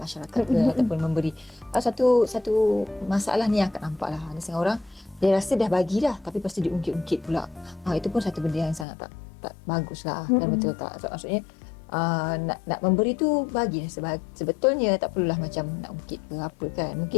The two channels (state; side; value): drops out; right; at 8.8 s